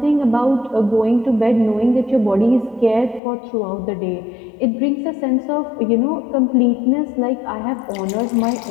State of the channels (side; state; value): right; drops out; at 3.2 s